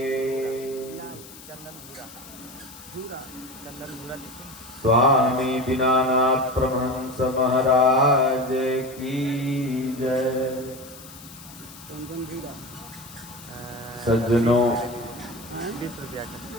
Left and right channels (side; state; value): left; noise; hiss, 18 dB below the sound